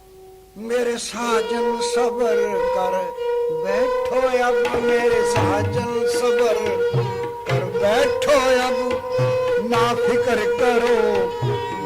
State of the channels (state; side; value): identical; both; correlation 1.00